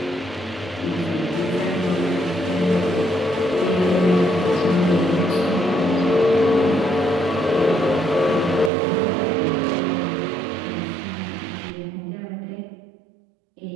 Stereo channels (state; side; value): drops out; left; at 8.7 s